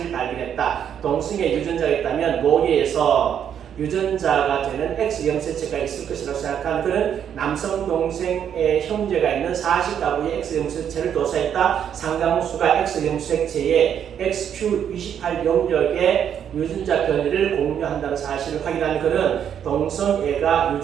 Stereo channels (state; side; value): quieter; left; 8.8 dB